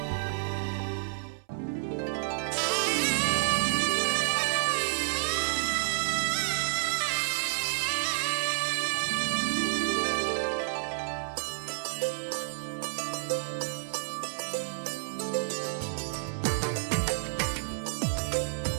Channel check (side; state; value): left; silent; 58 dB below the other